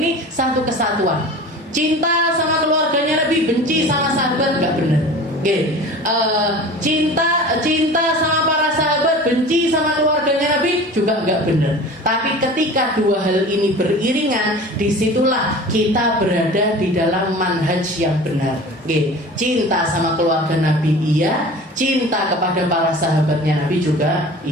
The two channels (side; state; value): both; normal; correlation 0.39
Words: satu kesatuan. Cinta sama keluarganya Nabi, benci sama sahabat, nggak benar. Cinta sama para sahabat, benci sama keluarganya Nabi juga nggak benar. Tapi ketika dua hal ini beriringan, disitulah kita berada di dalam manhaj yang benar. Cinta sama keluarga Nabi iya, cinta kepada para sahabatnya Nabi juga